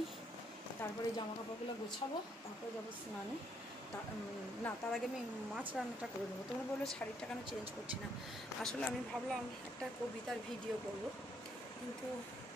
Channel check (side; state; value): both; normal; correlation 0.71